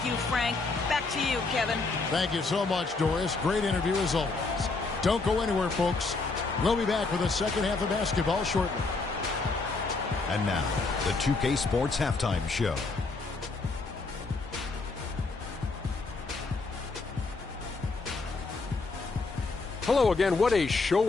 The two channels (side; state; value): right; quieter; 3.8 dB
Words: you, Frank. Back to you, Kevin. Thank you so much, Doris. Great interview as always. Don't go anywhere, folks. We'll be back with the second half of basketball shortly. And now, the 2K Sports Halftime Show. Hello again. What a